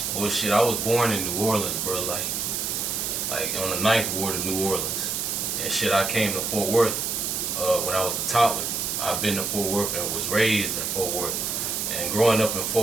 Well, shit, I was born in New Orleans, bro. Like on the ninth ward of New Orleans, and shit, I came to Fort Worth when I was a toddler. I've been to Fort Worth and was raised in Fort Worth, and growing up in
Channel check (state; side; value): noise; right; hiss, 1 dB below the sound